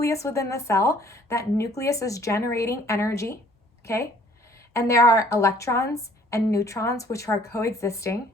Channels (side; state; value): both; normal; correlation 0.58